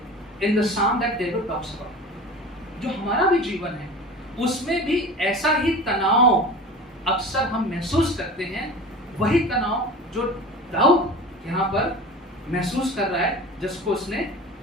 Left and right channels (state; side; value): normal; both; correlation 0.36